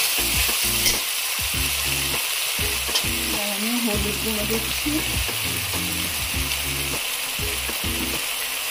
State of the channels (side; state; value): both; identical; correlation 1.00